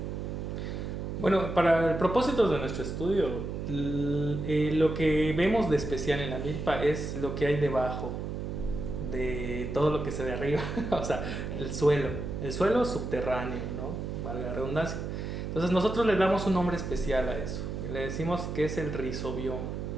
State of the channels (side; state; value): right; noise; hum, 5 dB below the sound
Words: Bueno, para el propósito de nuestro estudio, lo que vemos de especial en la milpa es lo que hay debajo de todo lo que se ve arriba, o sea, el suelo subterráneo, ¿no? Valga la redundancia. Entonces nosotros le damos un nombre especial a eso, le decimos que es el rizobioma.